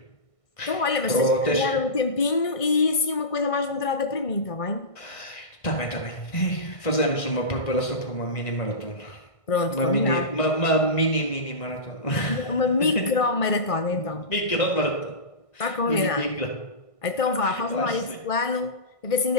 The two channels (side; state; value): right; late; 1.5 ms